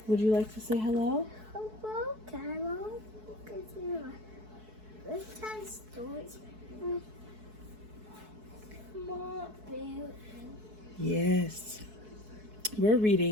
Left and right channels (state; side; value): late; left; 4.6 ms